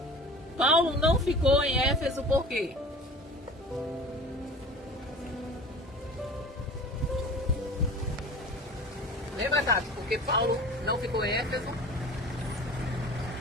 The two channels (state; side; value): normal; both; correlation 0.40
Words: Paulo não ficou em Éfeso por quê? Lembra, Tati? Porque Paulo não ficou em Éfeso?